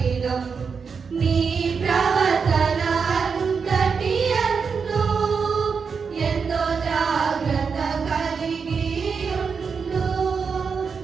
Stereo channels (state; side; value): quieter; left; 5.7 dB